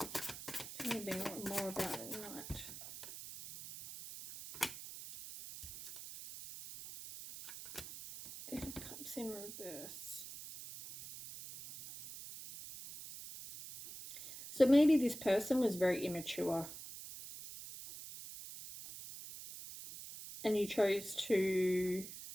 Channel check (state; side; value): noise; right; hiss, 11 dB below the sound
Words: Tell me a bit more about it tonight. Eight of Cups in reverse. So maybe this person was very immature and you chose to